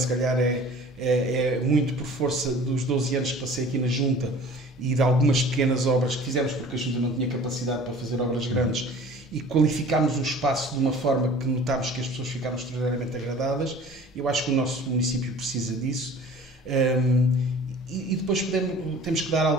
calhar, é muito por força dos 12 anos que passei aqui na Junta e de algumas pequenas obras que fizemos, porque a Junta não tinha capacidade para fazer obras grandes. e qualificámos o espaço de uma forma que notámos que as pessoas ficaram extraordinariamente agradadas. Eu acho que o nosso município precisa disso. E depois temos que dar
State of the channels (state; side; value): normal; both; correlation 0.46